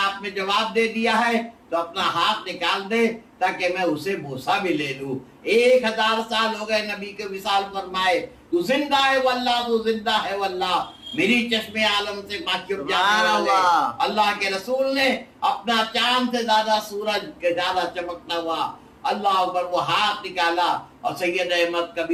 آپ نے جواب دے دیا ہے تو اپنا ہاتھ نکال دے تاکہ میں اسے بوسہ بھی لے لوں. 1000 سال ہو گئے نبی کے وصال فرمائے، تو زندہ ہے واللہ، تو زندہ ہے واللہ. میری چشم عالم سے واقف جانے والے اللہ کے رسول نے اپنا چاند سے زیادہ سورج کے زیادہ چمکتا ہوا اللہ اکبر وہ ہاتھ نکالا اور سید احمد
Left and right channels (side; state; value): both; identical; correlation 1.00